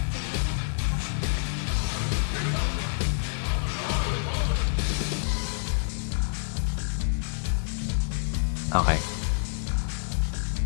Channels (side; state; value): right; silent; 60 dB below the other